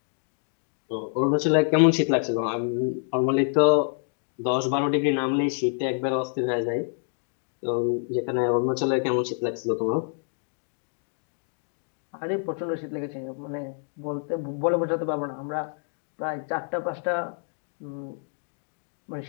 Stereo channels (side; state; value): right; silent; 60 dB below the other